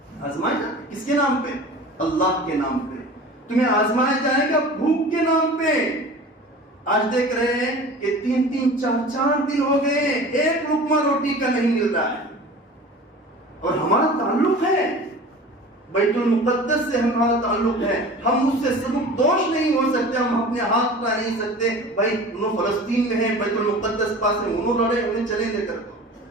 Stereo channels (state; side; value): normal; both; correlation 0.39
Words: آزمائے کس کے نام پہ؟ اللہ کے نام پہ۔ تمہیں آزمایا جائے گا بھوک کے نام پہ۔ آج دیکھ رہے ہیں کہ 3-3 4-4 دن ہو گئے، ایک لقمہ روٹی کا نہیں مل رہا ہے، اور ہمارا تعلق ہے بیت المقدس سے، ہمارا تعلق ہے، ہم اس سے سبک دوش نہیں ہو سکتے، ہم اپنے ہاتھ اٹھا نہیں سکتے بھائی انہوں فلسطین میں ہیں، بیت المقدس پاس میں، انہوں لڑے، انہیں چلے دے کر